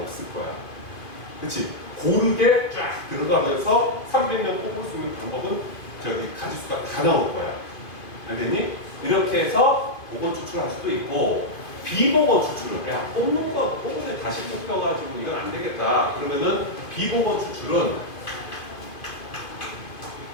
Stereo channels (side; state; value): right; late; 2.5 ms